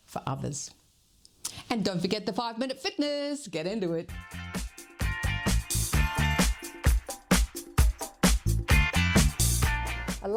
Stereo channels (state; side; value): identical; both; correlation 1.00